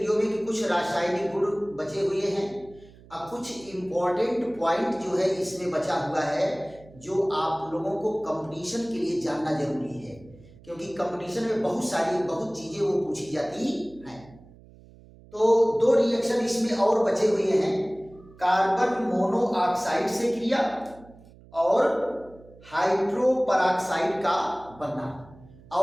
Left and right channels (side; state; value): right; noise; hum, 23 dB below the sound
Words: में कि कुछ रासायनिक गुण बचे हुए हैं। अब कुछ इंपॉर्टेंट पॉइंट जो है इसमें बचा हुआ है जो आप लोगों को कंपटीशन के लिए जानना जरूरी है, क्योंकि कंपटीशन में बहुत चीजें वो पूछी जाती हैं। तो दो रिएक्शन इसमें और बचे हुए हैं, कार्बन मोनोऑक्साइड से क्रिया और हाइड्रोपरऑक्साइड का बनना,